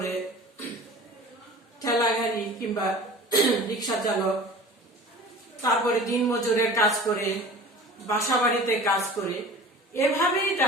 ঠেলা গাড়ি কিংবা রিক্সা চালক, তারপরে দিনমজুরের কাজ করে, বাসাবাড়িতে কাজ করে। এভাবেই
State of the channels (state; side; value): normal; both; correlation 0.40